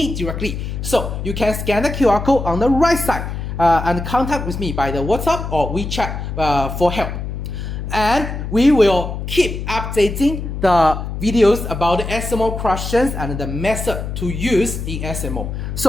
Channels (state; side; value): noise; left; hum, 5 dB below the sound